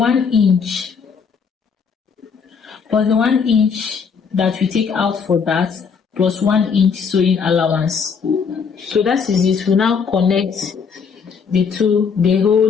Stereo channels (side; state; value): right; quieter; 6.0 dB